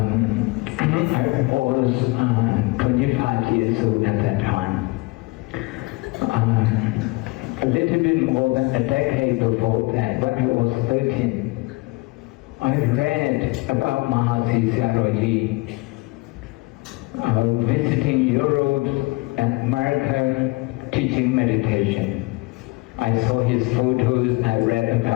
was 25 years old at that time. A little bit more than a decade before that, when I was 13, I read about Mahasi Sayadaw visiting Europe and America teaching meditation. I saw his photos, I read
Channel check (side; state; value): right; quieter; 24.4 dB